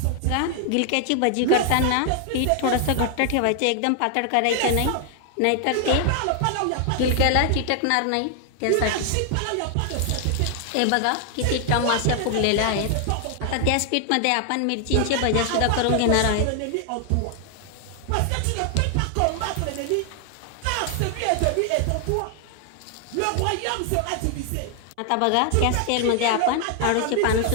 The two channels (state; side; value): different; both; correlation 0.00